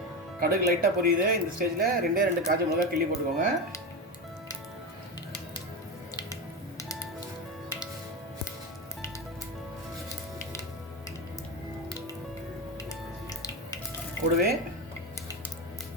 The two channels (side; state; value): both; normal; correlation 0.18